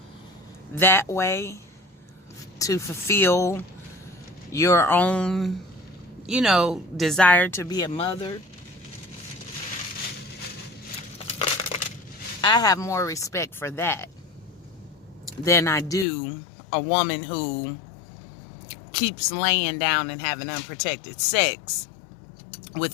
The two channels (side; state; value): right; drops out; at 16.1 s